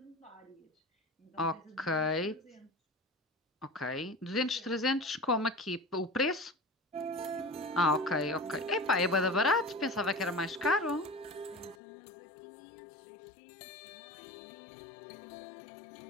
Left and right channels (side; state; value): right; drops out; at 11.8 s